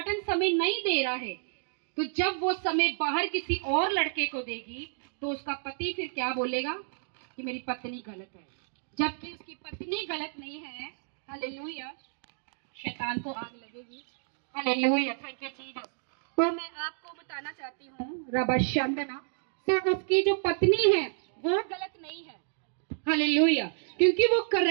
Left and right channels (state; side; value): silent; left; digital silence